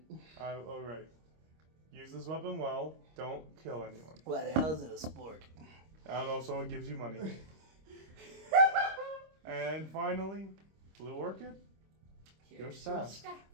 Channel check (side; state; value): left; late; 26 ms